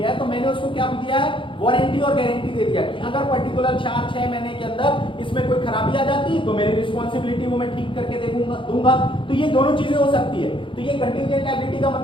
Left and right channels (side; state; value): right; late; 0.25 ms